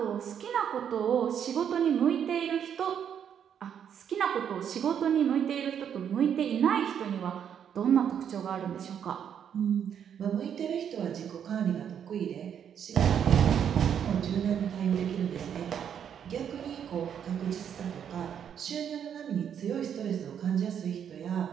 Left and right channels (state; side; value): quieter; left; 8.5 dB